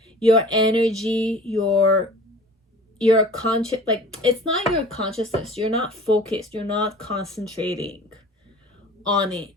your energy, your conscious, like, it's not your consciousness. You're not focused. You're not concentrating on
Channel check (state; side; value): normal; both; correlation 0.44